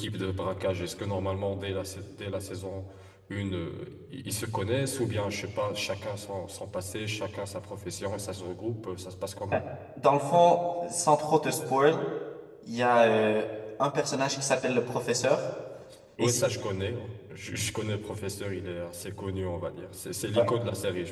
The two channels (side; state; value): both; identical; correlation 1.00